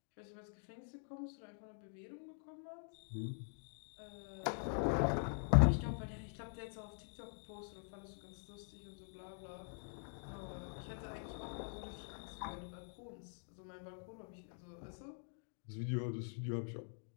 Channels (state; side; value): silent; right; digital silence